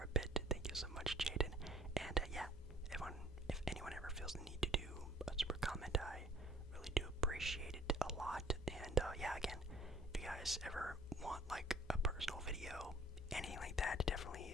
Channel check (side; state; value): both; normal; correlation 0.55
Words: bit. Thank you so much, Jaden. And yeah, if anyone ever feels the need to do a super comment, I really do appreciate it a lot. And yeah, again, if you guys ever want like a personal video, anything like that,